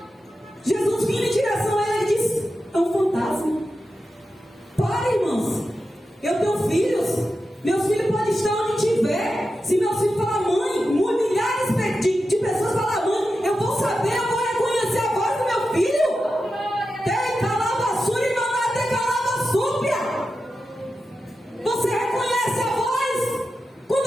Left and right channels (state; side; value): normal; both; correlation 0.91